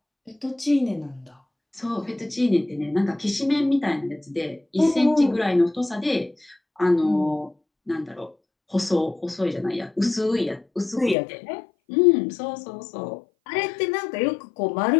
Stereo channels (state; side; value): drops out; right; at 11.2 s